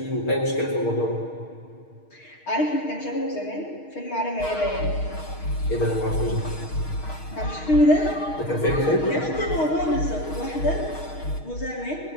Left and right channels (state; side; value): late; right; 6.4 ms